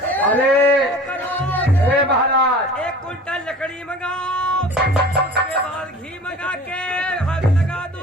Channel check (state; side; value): normal; both; correlation 0.42